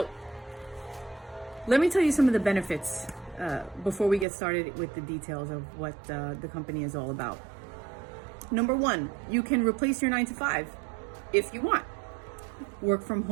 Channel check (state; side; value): drops out; left; at 4.2 s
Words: let me tell you some of the benefits before we get started with the details of what the company is all about. Number one, you can replace your 9 to 5 if you want. Work from